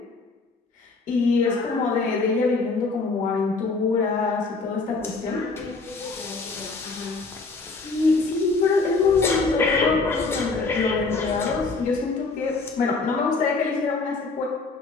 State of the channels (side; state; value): right; quieter; 3.9 dB